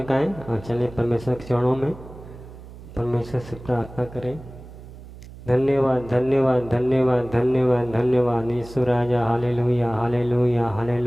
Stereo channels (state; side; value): noise; right; hum, 16 dB below the sound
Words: और चलिए परमेश्वर के चरणों में परमेश्वर से प्रार्थना करें। धन्यवाद धन्यवाद धन्यवाद धन्यवाद धन्यवाद यीशु राजा। Hallelujah hallelujah